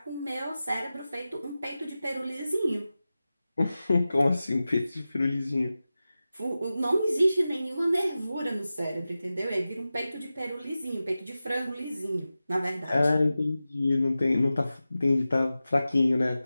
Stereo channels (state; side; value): inverted; both; correlation -0.94